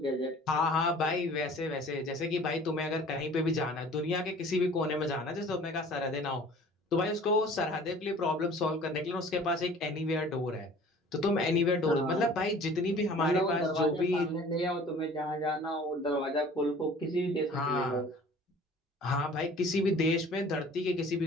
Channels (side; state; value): both; normal; correlation 0.48